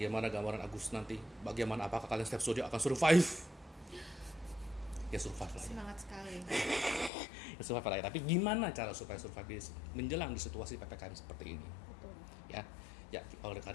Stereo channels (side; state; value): right; drops out; at 7.1 s